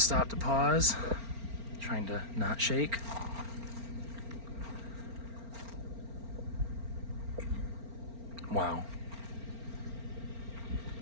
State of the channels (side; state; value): left; late; 4.4 ms